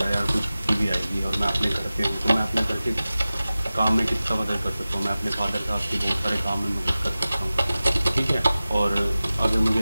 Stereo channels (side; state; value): both; inverted; correlation -0.96